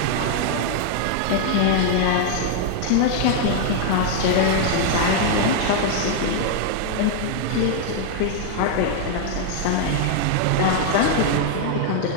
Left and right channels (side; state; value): both; different; correlation 0.00